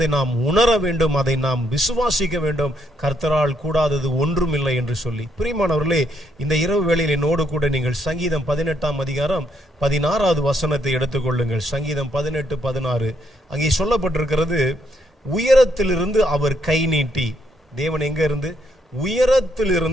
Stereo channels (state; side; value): normal; both; correlation 0.74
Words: நாம் உணர வேண்டும், அதை நாம் விசுவாசிக்க வேண்டும். கர்த்தரால் கூடாதது ஒன்றுமில்லை என்று சொல்லி, பிரியமானவர்களே, இந்த இரவு வேளையில் என்னோடு கூட நீங்கள் சங்கீதம் 18ஆம் அதிகாரம் 16வது வசனத்தை எடுத்துக்கொள்ளுங்கள். சங்கீதம் 18:16 அங்கே சொல்லப்பட்டிருக்கிறது, உயரத்திலிருந்து அவர் கை நீட்டி. தேவன் எங்க இருந்து?